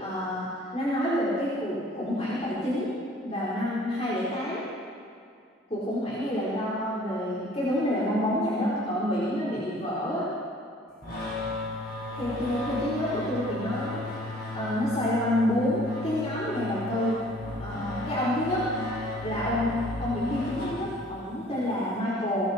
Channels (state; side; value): normal; both; correlation 0.53